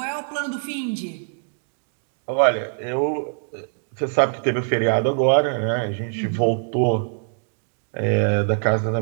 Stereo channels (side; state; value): left; silent; digital silence